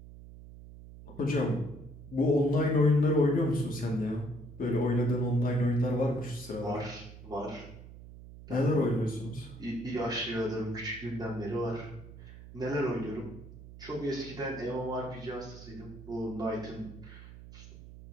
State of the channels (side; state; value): right; noise; hum, 16 dB below the sound